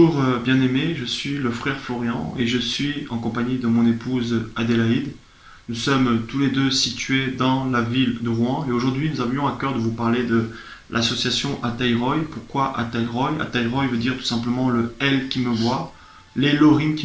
bien-aimé, je suis le frère Florian et je suis en compagnie de mon épouse Adélaïde. Nous sommes tous les deux situés dans la ville de Rouen et aujourd'hui nous avions à cœur de vous parler de l'association Ataïroy. Pourquoi Ataïroy? Ataïroy veut dire tout simplement le Elle qui me voit, l'Elohim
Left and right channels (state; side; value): identical; both; correlation 1.00